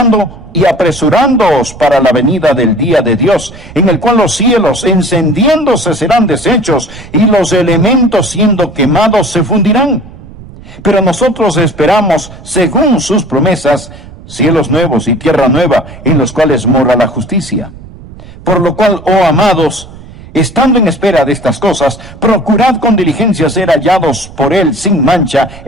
y apresurándoos para la venida del día de Dios, en el cual los cielos encendiéndose serán deshechos, y los elementos siendo quemados se fundirán? Pero nosotros esperamos, según sus promesas, cielos nuevos y tierra nueva, en los cuales mora la justicia. Por lo cual, oh amados, estando en espera de estas cosas, procurad con diligencia ser hallados por Él sin mancha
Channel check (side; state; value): right; noise; rumble, 18 dB below the sound